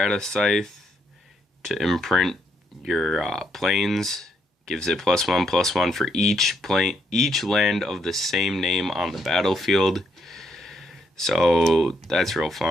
Scythe to imprint your plains. Gives it +1/+1 for each land of the same name on the battlefield. So that's real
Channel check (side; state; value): both; normal; correlation 0.76